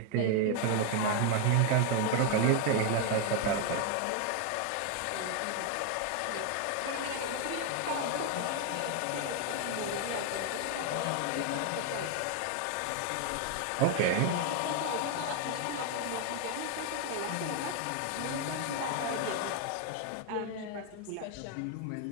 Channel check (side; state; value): both; different; correlation 0.00